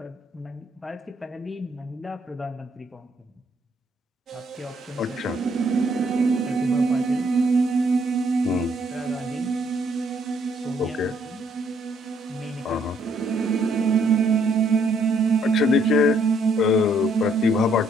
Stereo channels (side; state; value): both; normal; correlation 0.69